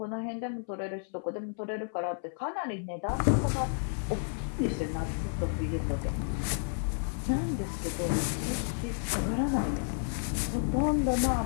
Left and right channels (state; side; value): silent; right; 57 dB below the other